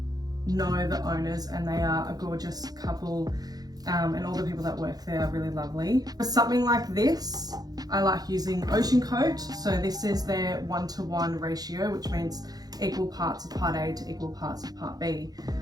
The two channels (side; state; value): left; late; 0.19 ms